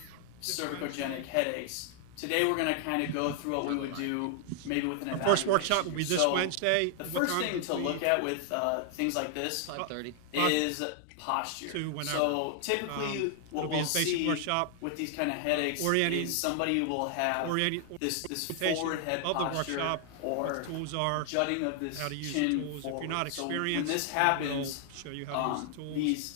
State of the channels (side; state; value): both; different; correlation 0.00